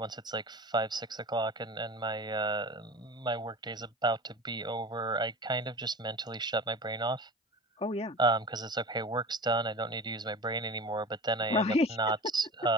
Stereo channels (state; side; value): normal; both; correlation 0.34